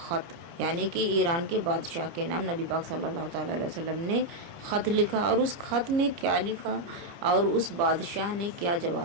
یعنی کہ ایران کے بادشاہ کے نام نبی پاک صلی اللہ تعالیٰ علیہ وسلم نے خط لکھا، اور اس خط میں کیا لکھا اور اس بادشاہ نے کیا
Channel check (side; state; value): left; late; 30 ms